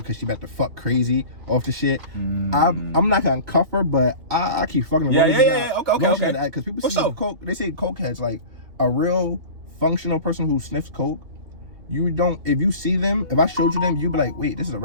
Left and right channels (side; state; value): left; late; 2.8 ms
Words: she about to fuck crazy off the shit, I'm not gonna cuff her, but I keep fucking around. Yeah. Okay. Because people see coke, they say coke heads, like a real functional person who sniffs coke. You don't. If you see them, if I showed you them, you'd be like, "Wait, this is a